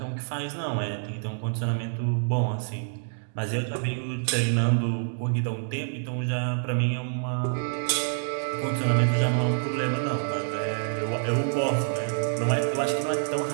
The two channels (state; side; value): silent; left; digital silence